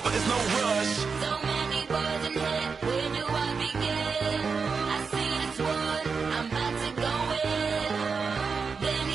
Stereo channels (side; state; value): left; quieter; 5.2 dB